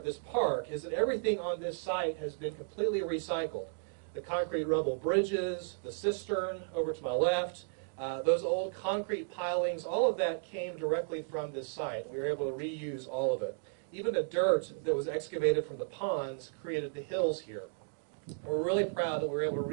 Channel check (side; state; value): left; silent; digital silence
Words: this park is that everything on this site has been completely recycled. The concrete rubble bridges, the cistern over to my left, those old concrete pilings, all of that came directly from this site. We were able to reuse all of it. Even the dirt that was excavated from the ponds created the hills here. We're really proud that we were able to